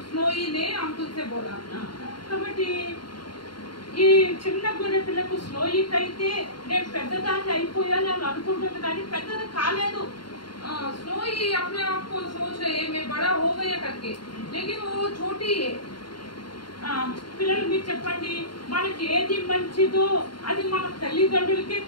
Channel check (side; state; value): right; late; 0.72 ms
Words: स्नोई ने अंकुल से बोला। కాబట్టి ఈ చిన్న గొర్రె పిల్లకు స్నోయికి అయితే నేను పెద్దదాన్ని అయిపోయాను అని అనుకుంటుంది, కానీ పెద్దది కాలేదు. स्नोई अपने आप को सोच रही है मैं बड़ा हो गया करके, लेकिन वो छोटी है। పిల్లలు మీరు చెప్పండి, మనకి ఏది మంచిదో అది మన తల్లిదండ్రులకే